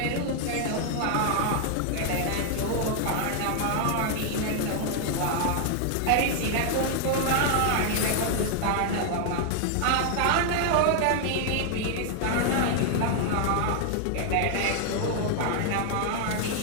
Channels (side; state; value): both; different; correlation 0.00